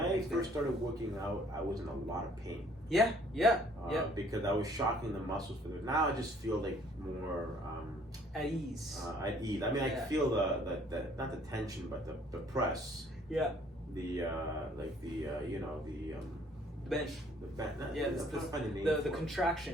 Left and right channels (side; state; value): both; normal; correlation 0.60